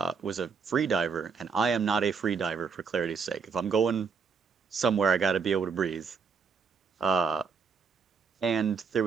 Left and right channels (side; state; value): left; quieter; 5.6 dB